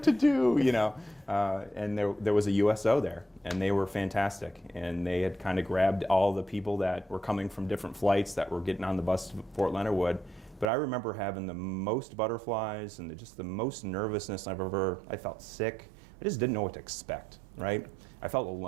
to do, And there was a USO there, and they were fantastic, and they had kind of grabbed all the people that were coming from different flights that were getting on the bus to Fort Leonard Wood. But I remember having the most butterflies and just the most nervousness I felt sick. I just didn't know what to expect, right? I felt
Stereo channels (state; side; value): drops out; left; at 10.7 s